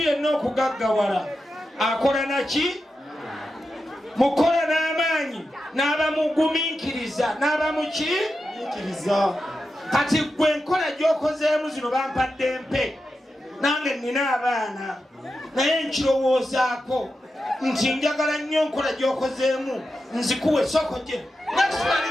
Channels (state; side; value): normal; both; correlation 0.90